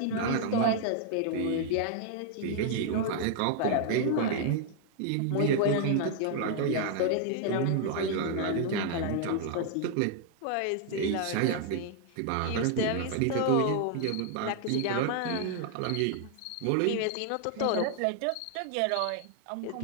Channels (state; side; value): different; both; correlation 0.00